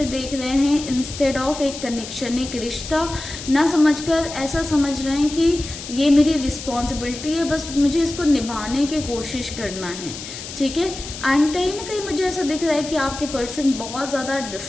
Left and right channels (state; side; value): noise; left; hiss, 10 dB below the sound